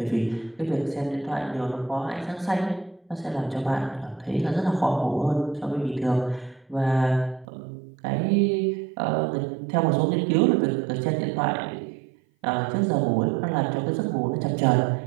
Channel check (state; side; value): drops out; left; at 7.5 s